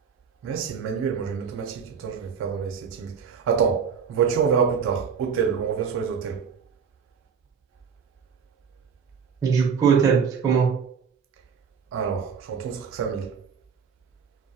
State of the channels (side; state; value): left; quieter; 6.5 dB